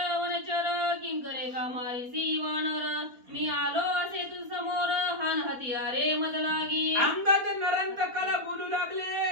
वनचर किंकरे का मारिसी वानर मी आलो असे तू समोर हान हतियारे मज लागी. अंगद नरांतकाला बोलू लागले,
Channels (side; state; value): left; late; 4.2 ms